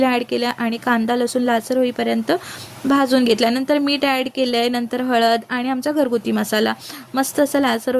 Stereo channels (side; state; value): both; identical; correlation 1.00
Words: ॲड केलं आणि कांदा लसूण लालसर होईपर्यंत भाजून घेतला। नंतर मीठ ॲड केले, नंतर हळद आणि आमचा घरगुती मसाला मस्त असं लालसर